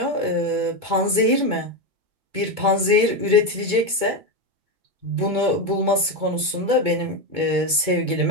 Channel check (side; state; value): left; late; 2.2 ms